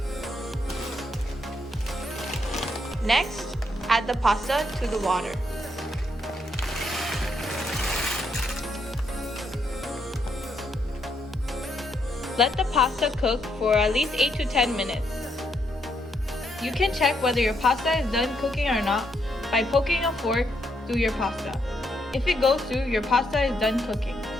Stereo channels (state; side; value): normal; both; correlation 0.77